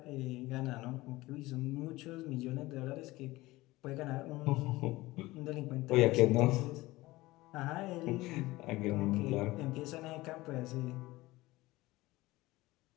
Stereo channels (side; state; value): right; quieter; 19.3 dB